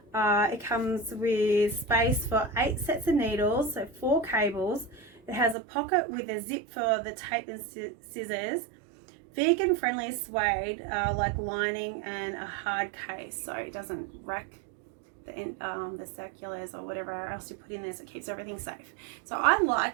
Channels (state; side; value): drops out; left; at 5.6 s